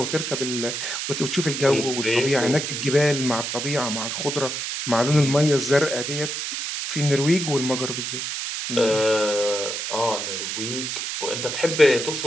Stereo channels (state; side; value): noise; right; hiss, 4 dB below the sound